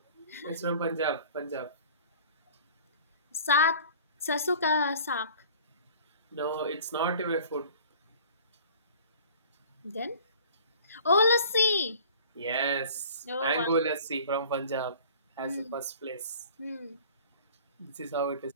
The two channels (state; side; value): inverted; both; correlation -0.47